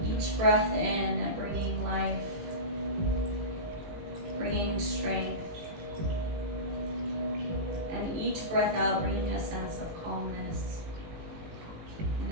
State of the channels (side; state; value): left; late; 18 ms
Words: Each breath in, bringing life, bringing strength. And each breath out, bringing a sense of calmness and